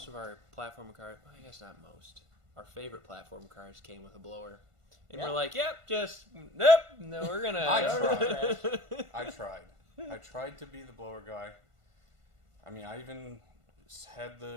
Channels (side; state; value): left; late; 1.5 ms